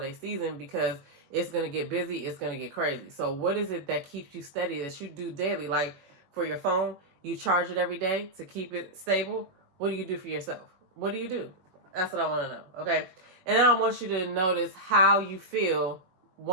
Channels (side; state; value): left; late; 21 ms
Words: season, because it's going to get busy. It's going to get crazy. So what is it that keeps you steady, that you do daily? Like, for your phone, you charge it every day to keep it stable. What do you do for yourself? What do you do? That's what I want to know. Okay. And then I want you to notice how you feel